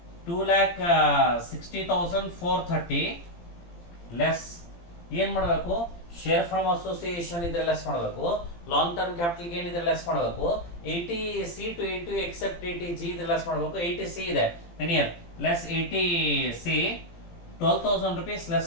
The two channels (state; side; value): late; right; 17 ms